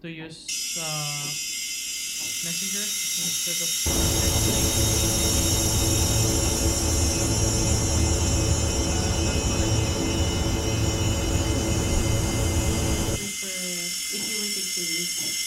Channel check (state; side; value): identical; both; correlation 1.00